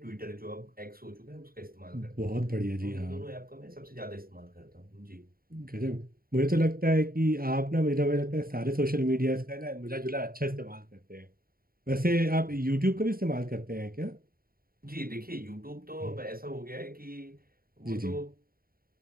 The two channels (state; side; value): late; left; 0.43 ms